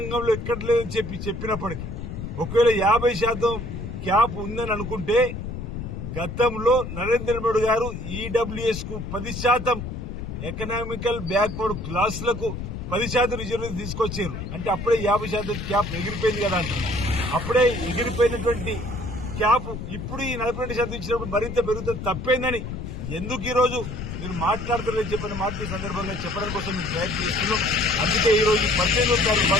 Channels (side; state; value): left; noise; rumble, 7 dB below the sound